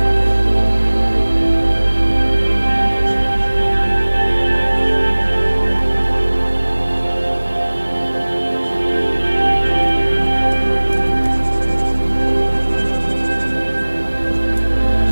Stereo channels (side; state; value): both; inverted; correlation -1.00